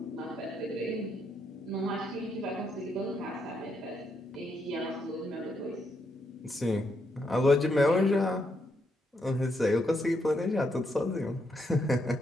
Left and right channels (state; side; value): normal; both; correlation 0.78